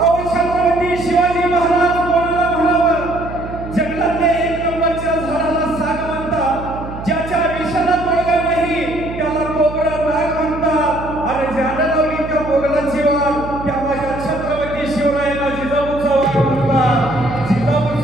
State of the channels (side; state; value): right; noise; hum, 10 dB below the sound